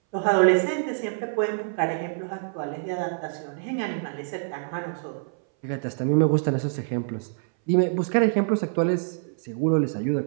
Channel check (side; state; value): left; silent; 59 dB below the other